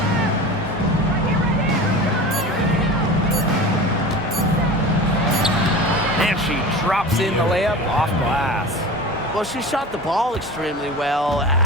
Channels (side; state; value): both; normal; correlation 0.33